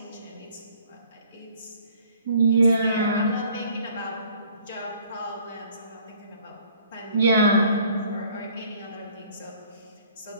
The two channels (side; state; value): both; inverted; correlation -0.56